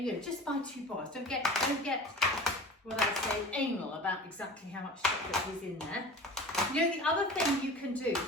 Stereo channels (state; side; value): normal; both; correlation 0.37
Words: you know, just buy 2 bars. Don't get what I say anal about exactly how much chocolate is in there. You know, the other thing you can do,